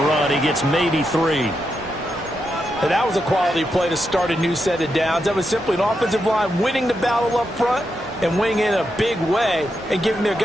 run. He gets maybe 3. And that was a quality play to start a new set of downs. That was simply an offensive line winning the battle up front and winning in a big way and giving their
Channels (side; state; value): both; normal; correlation 0.85